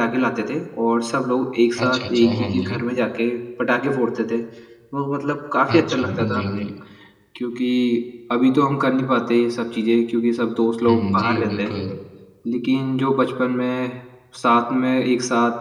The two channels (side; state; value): both; identical; correlation 1.00